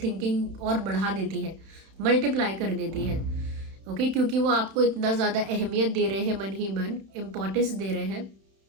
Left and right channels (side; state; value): left; late; 31 ms